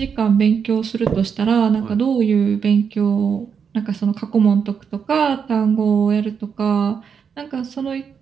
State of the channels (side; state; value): left; quieter; 6.7 dB